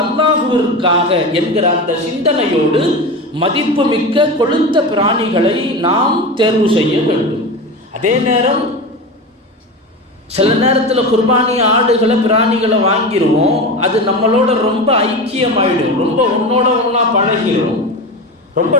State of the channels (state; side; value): normal; both; correlation 0.25